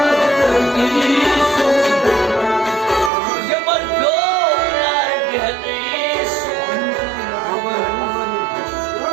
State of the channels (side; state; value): left; drops out; at 3.1 s